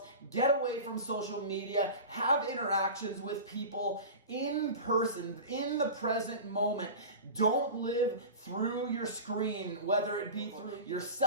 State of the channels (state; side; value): inverted; both; correlation -0.32